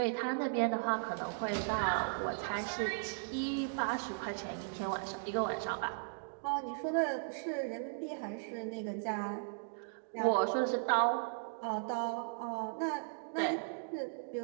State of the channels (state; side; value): silent; left; digital silence